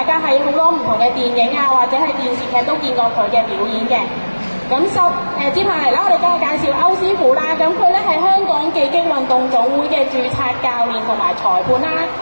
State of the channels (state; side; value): inverted; both; correlation -1.00